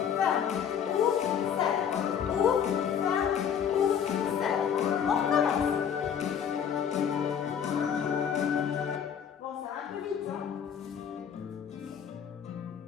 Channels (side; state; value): right; quieter; 8.1 dB